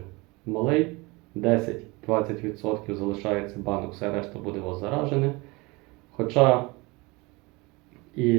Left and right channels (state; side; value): quieter; left; 25.0 dB